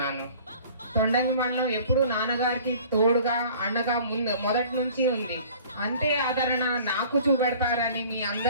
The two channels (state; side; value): inverted; both; correlation -0.48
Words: తొండంగి మండలం ఎప్పుడు నాన్నగారికి తోడుగా, అండగా మొదటి నుంచి ఉంది. అంతే ఆదరణ నాకు చూపెడతారని మీ